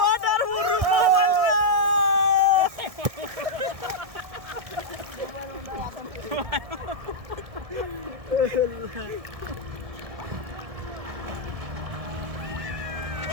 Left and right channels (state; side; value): late; left; 1.6 ms